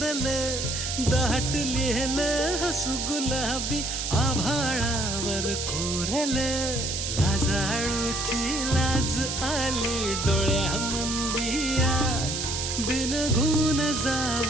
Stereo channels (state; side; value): noise; right; hiss, 3 dB below the sound